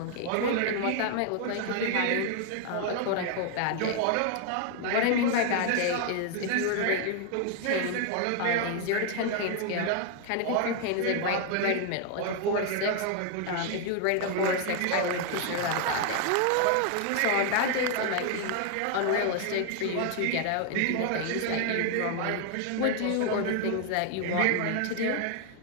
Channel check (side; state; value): both; different; correlation 0.00